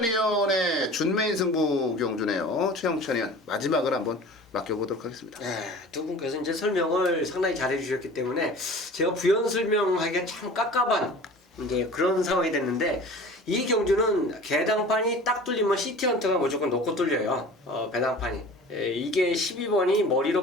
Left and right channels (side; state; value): both; normal; correlation 0.41